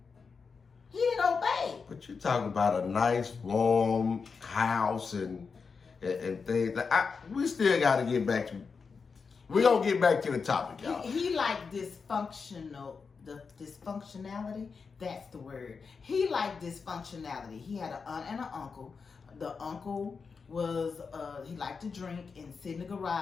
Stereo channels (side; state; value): right; quieter; 5.2 dB